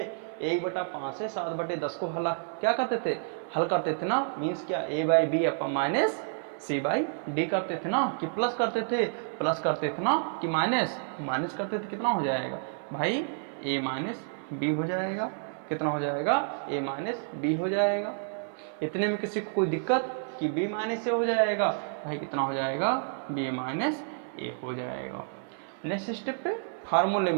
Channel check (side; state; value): left; silent; 58 dB below the other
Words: 1/5 से 7/10 को क्या करते थे, हल करते थे ना। मीन्स क्या, a/b अपन माइनस c/d करते थे ना, कि प्लस करते थे, प्लस करते थे ना, कि माइनस करते थे। कितना हो जाएगा भाई, a-b हो जाएगा। कितना हो जाएगा, a-b हो जाएगा। इतने में किसी को कोई दिक्कत कि b - a हो जाएगा, भाई कितना हो जाएगा, b - a हो जाएगा। नेक्स्ट स्टेप पे फार्मूले